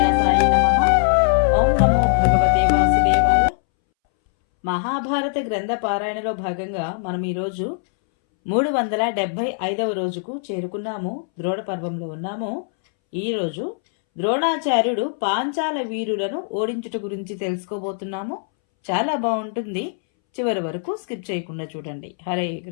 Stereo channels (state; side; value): silent; right; 63 dB below the other